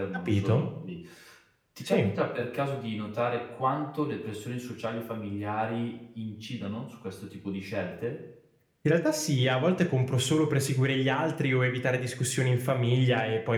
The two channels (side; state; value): both; identical; correlation 1.00